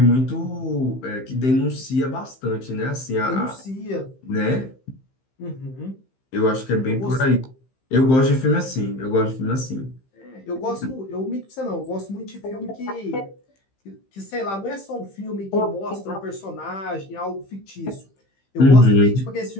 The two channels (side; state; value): right; late; 15 ms